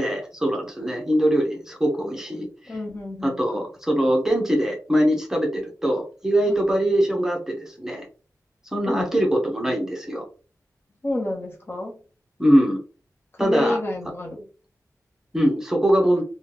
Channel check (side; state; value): both; normal; correlation 0.93